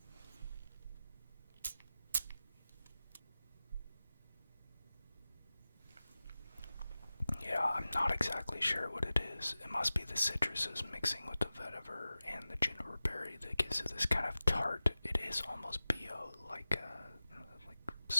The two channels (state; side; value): inverted; both; correlation -0.96